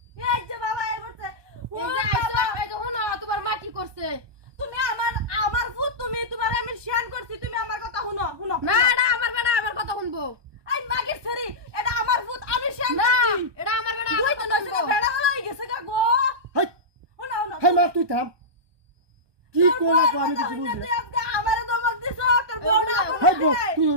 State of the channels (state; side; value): late; left; 1.2 ms